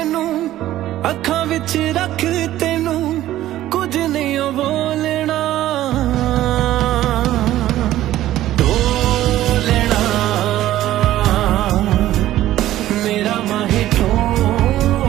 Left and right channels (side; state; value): left; quieter; 14.0 dB